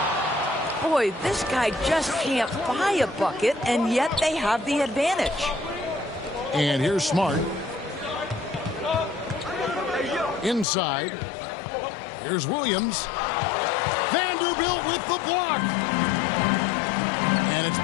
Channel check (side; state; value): right; drops out; at 10.7 s